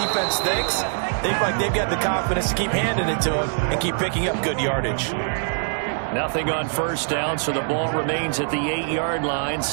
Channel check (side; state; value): left; silent; digital silence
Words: thinks. They feel like they've got the confidence to keep handing it to him and keep picking up good yardage. Nothing on first down, so the ball remains at the 8-yard line.